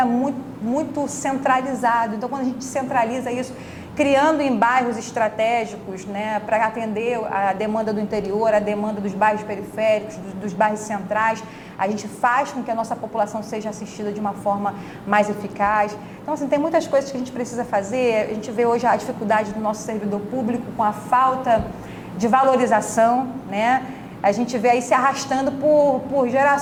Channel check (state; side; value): identical; both; correlation 1.00